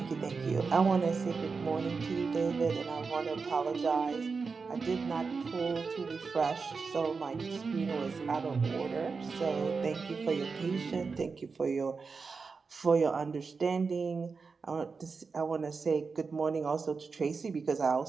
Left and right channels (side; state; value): left; quieter; 4.8 dB